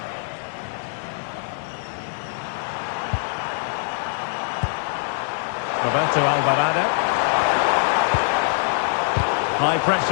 Roberto Alvarado. High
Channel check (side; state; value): right; silent; digital silence